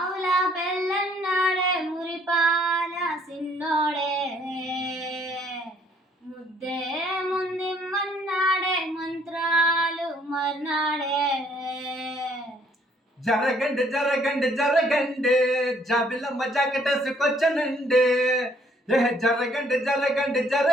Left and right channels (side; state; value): both; normal; correlation 0.64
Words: బెల్లన్నాడే మురిపాల సిన్నోడే ముద్దే ముందిమ్మన్నాడే మంత్రాలు మర్నాడే జరగండి జరగండి జరగండి జాబిలమ్మ జాకెటేసుకొచ్చనండి. జరగండి జరగండి